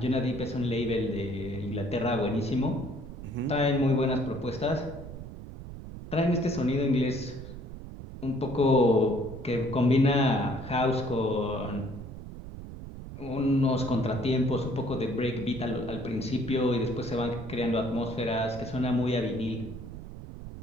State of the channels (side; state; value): right; noise; rumble, 11 dB below the sound